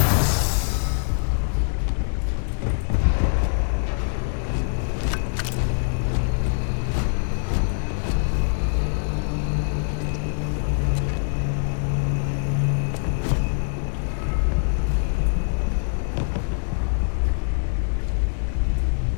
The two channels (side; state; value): right; silent; digital silence